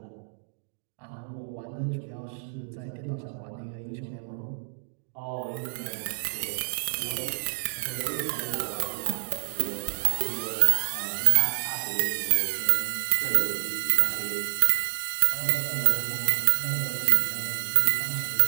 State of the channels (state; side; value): silent; left; digital silence